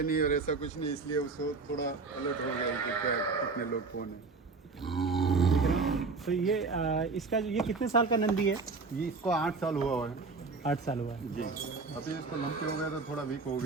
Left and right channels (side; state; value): left; quieter; 4.2 dB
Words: नहीं और ऐसा कुछ नहीं, इसलिए उसको थोड़ा अलर्ट हो गया कि क्या कितने लोग कौन है। तो ये इसका ये कितने साल का नंदी है? ये इसको 8 साल हुआ है। 8 साल हुआ है जी, अभी इसको लंबे हो गया तो थोड़ा वीक हो